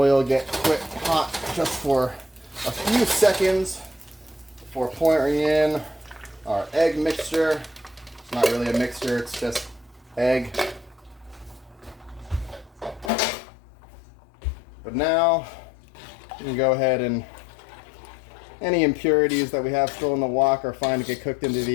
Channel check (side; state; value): right; drops out; at 13.1 s